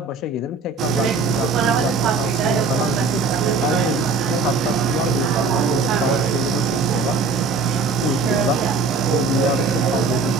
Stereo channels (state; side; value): quieter; left; 4.2 dB